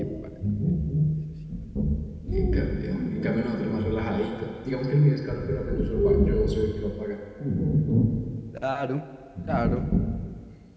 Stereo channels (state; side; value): identical; both; correlation 1.00